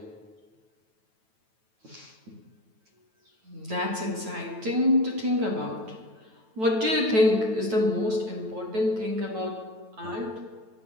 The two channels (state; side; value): late; left; 9.1 ms